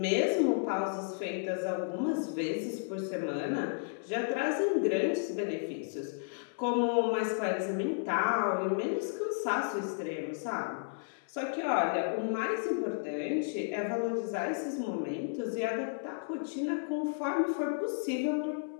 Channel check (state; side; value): silent; right; 56 dB below the other